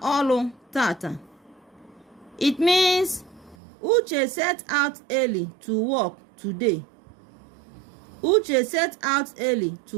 ọrụ tata. It means Uche set out early to work today. Uche set out early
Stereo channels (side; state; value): left; drops out; at 3.6 s